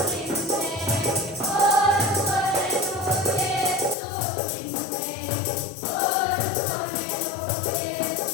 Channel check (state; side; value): drops out; right; at 4.0 s